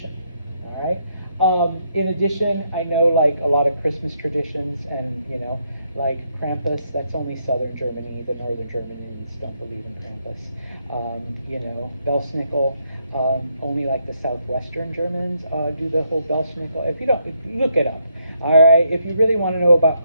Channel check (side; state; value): both; inverted; correlation -0.75